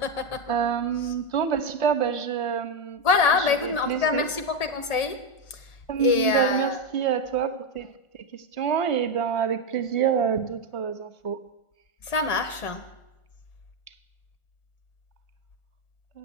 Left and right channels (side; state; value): right; late; 1.8 ms